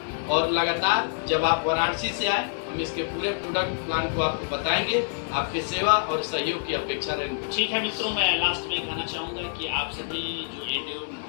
और लगातार जब आप वाराणसी से आए हम इसके पूरे प्रोडक्ट प्लान को आपको बताएंगे, आपकी सेवा और सहयोग की अपेक्षा रहेगी। ठीक है मित्रों, मैं लास्ट में कहना चाहूँगा कि आप सभी जो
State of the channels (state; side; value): silent; right; 61 dB below the other